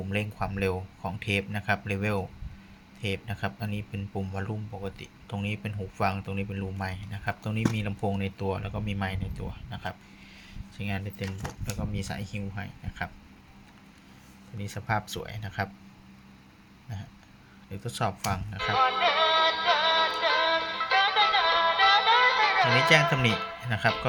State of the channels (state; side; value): identical; both; correlation 1.00